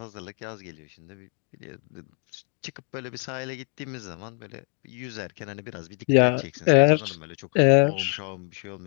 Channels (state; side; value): quieter; right; 39.6 dB